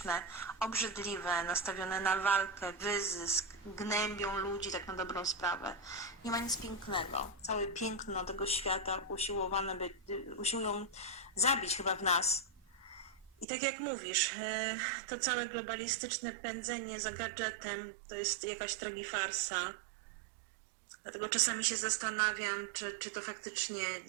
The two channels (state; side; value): drops out; left; at 13.5 s